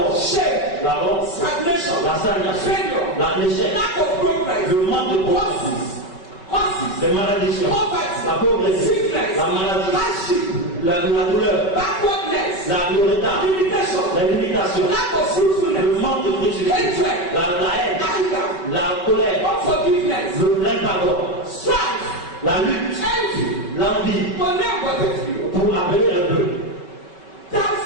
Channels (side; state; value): right; late; 5.3 ms